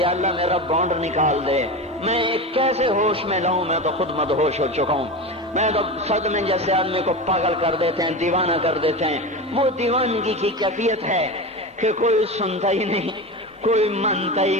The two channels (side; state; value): both; normal; correlation 0.24